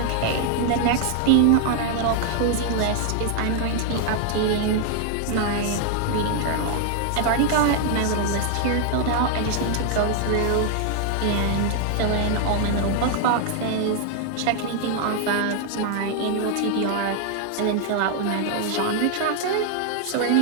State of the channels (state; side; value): different; both; correlation 0.00